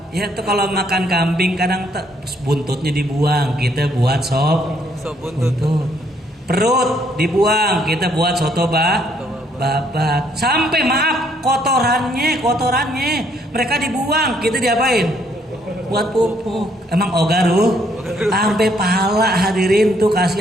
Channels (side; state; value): both; normal; correlation 0.68